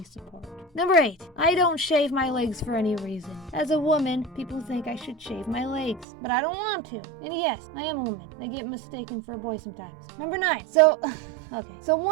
support. Number 8, I don't shave my legs for any reason. As a woman, people think I should shave my legs, but I don't want to. And yes, I am a woman. I get mistaken for a boy sometimes. Number 9, so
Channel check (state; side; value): drops out; left; at 6.1 s